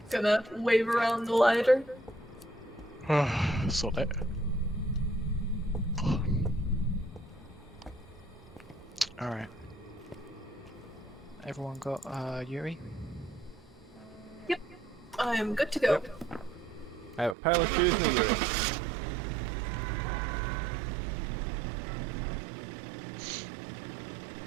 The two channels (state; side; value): drops out; left; at 17.4 s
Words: Gonna wave around the lighter. Sort it. Alright. Everyone got Yuri? Yep. I am good to go. Yep. I have a pile of Tues and a Yuri.